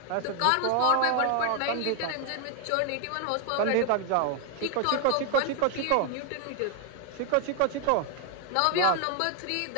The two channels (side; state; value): both; different; correlation 0.00